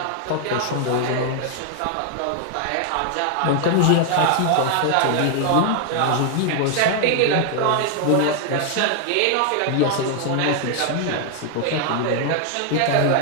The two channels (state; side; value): different; both; correlation 0.00